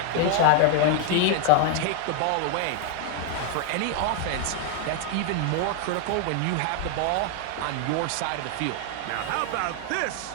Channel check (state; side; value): different; both; correlation 0.00